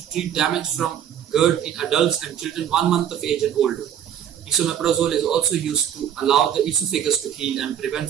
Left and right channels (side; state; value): left; quieter; 9.6 dB